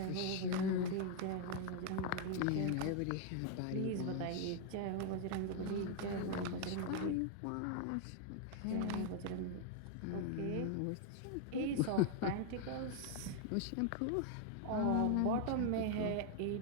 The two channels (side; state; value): both; different; correlation 0.00